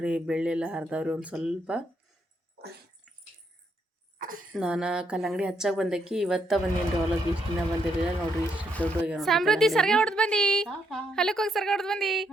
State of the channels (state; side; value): normal; both; correlation 0.76